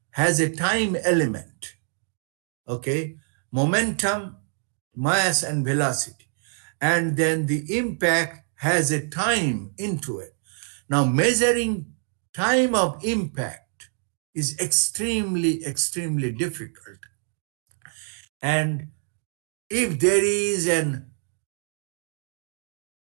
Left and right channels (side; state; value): left; silent; 55 dB below the other